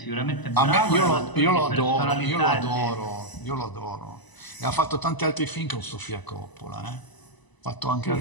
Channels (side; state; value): right; late; 1.0 ms